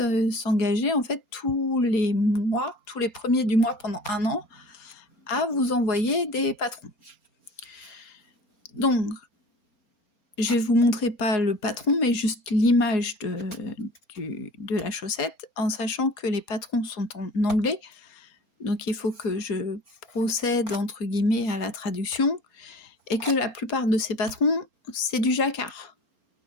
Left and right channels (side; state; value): right; late; 4.3 ms